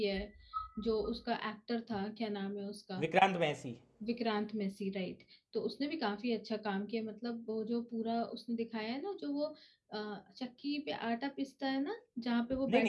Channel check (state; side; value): identical; both; correlation 1.00